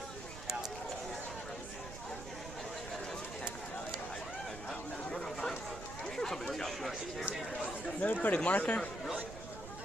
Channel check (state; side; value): noise; right; rumble, 11 dB below the sound